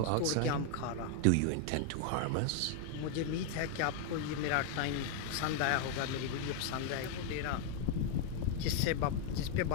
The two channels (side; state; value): both; different; correlation 0.00